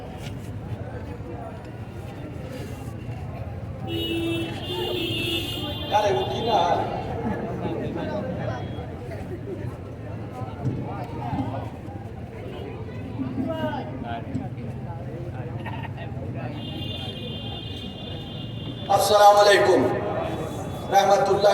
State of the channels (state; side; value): identical; both; correlation 1.00